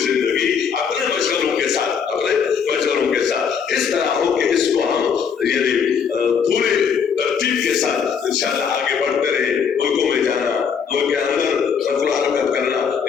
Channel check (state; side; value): quieter; right; 6.8 dB